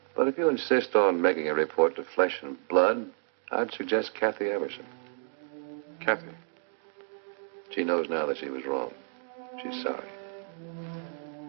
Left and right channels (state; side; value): silent; left; 58 dB below the other